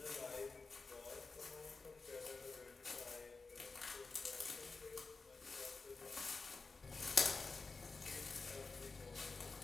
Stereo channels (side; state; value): right; quieter; 4.1 dB